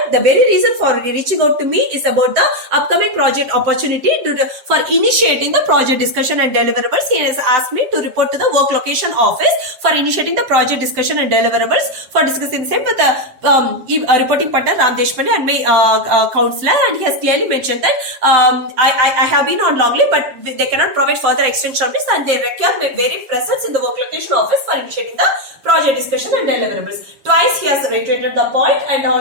the very reason for reaching out to me is about the upcoming project opportunity for initiating the project discussion and deliverables. He has asked me to report to the work location office for initiating the project discussion and deliverables, for discussing the same with the reporting partner Ram Deshpande and my counselor. And he has clearly mentioned that I have been on long leave, but they cannot provide further extension of this, and they require my very presence in the work location office for initiating the project discussion and deliverables. Twice he has reiterated the point and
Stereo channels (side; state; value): left; late; 7.8 ms